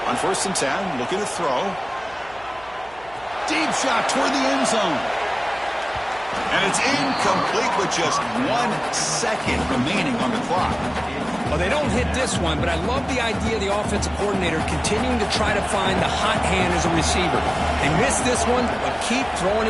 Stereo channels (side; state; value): right; noise; hum, 24 dB below the sound